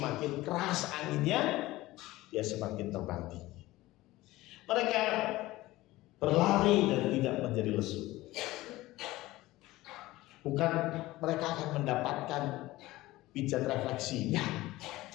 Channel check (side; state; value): right; quieter; 18.1 dB